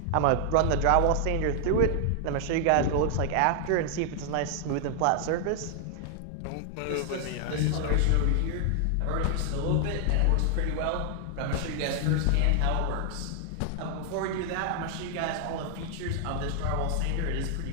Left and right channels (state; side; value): different; both; correlation 0.00